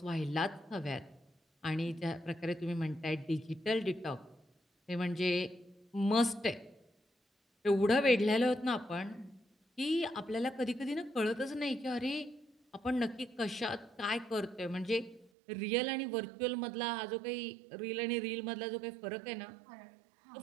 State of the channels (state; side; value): drops out; left; at 15.3 s